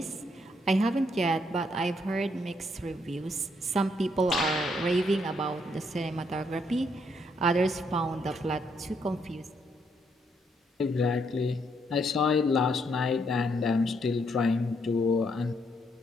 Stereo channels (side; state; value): both; normal; correlation 0.73